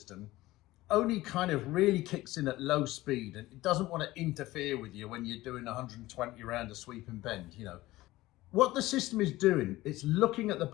only kind of really kicks in at low speed, and it doesn't want to interfere with you when you're doing 120 around a sweeping bend, you know. What the system is doing, it's looking at the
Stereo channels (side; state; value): right; quieter; 17.7 dB